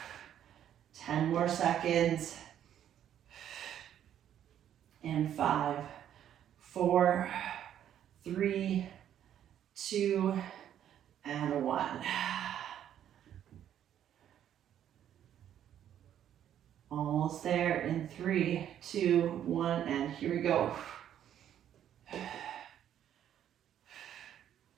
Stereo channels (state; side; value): quieter; left; 10.4 dB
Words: 10 more seconds. And 5, 4, 3, 2, and 1. Almost there in 3, 2, 1, and here we go.